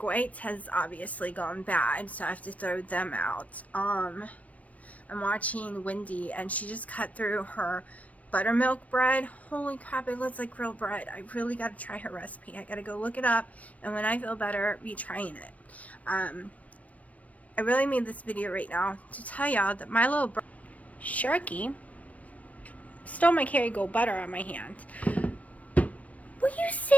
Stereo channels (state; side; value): late; right; 0.068 ms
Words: whites has obviously gone bad, so I have to throw them out. I'm watching Wendy, and she just cut through her buttermilk bread. Holy crap, it looks like real bread. I really got to try her recipe. I got to go look it up, and when I feel better, be trying it. I really made this video right now to tell y'all that my little Sharky stole my Kerrygold butter on my hand. Will you